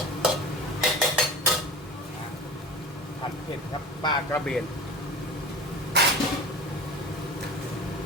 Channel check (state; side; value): normal; both; correlation 0.34